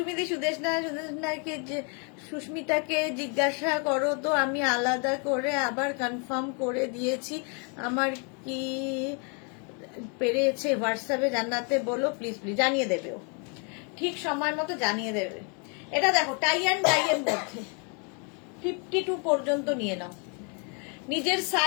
সুদেশনাকে সুস্মিতাকে জিজ্ঞাসা করো তো, আমি আলাদা করে আবার কনফার্ম করে দিয়েছি, আমার কি পেরেছে হোয়াটসঅ্যাপে জানাতে বলো প্লিজ। প্লিজ জানিয়ে দেবে, ও ঠিক সময় মতো জানিয়ে দেবে। এটা দেখো টাই অ্যান্ড ডাই এর মধ্যে 52 পর্যন্ত নিয়ে নাও। নিজের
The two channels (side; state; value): right; quieter; 36.8 dB